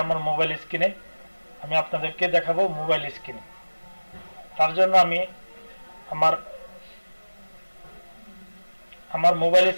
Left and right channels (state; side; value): inverted; both; correlation -1.00